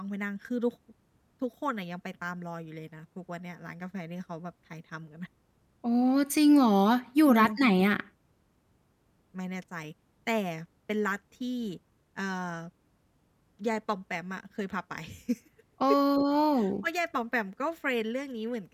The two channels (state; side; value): identical; both; correlation 1.00